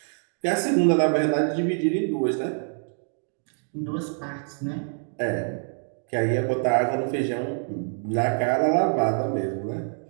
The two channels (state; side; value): silent; left; 61 dB below the other